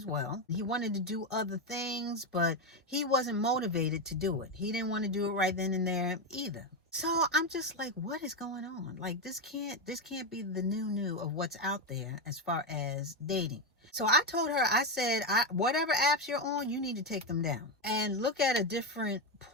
well. He wanted to do other things, but he wasn't motivated to do it. He didn't want to do it right then and there either. So I'm just like, what is going on? Like this can't be the new of what's out there as far as dating. So I told her, I said, whatever apps you're on, you need to take them down and look at a different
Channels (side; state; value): both; normal; correlation 0.09